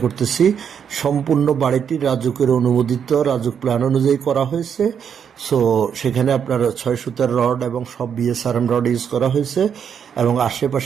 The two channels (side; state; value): left; quieter; 7.7 dB